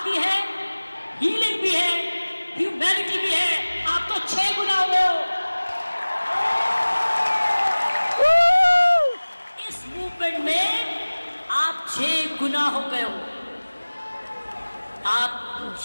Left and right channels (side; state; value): both; inverted; correlation -1.00